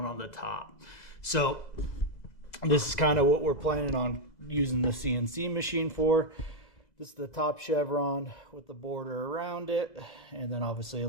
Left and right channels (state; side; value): late; right; 2.0 ms